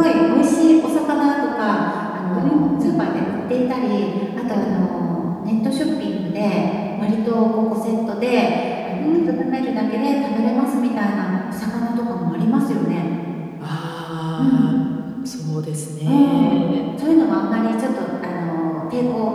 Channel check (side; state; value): both; identical; correlation 1.00